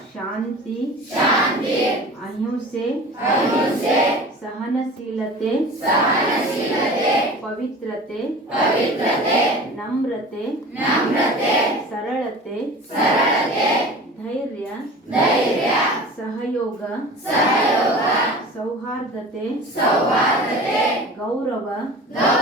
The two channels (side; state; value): both; normal; correlation 0.38